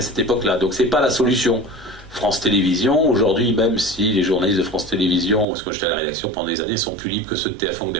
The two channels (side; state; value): left; drops out; at 5.5 s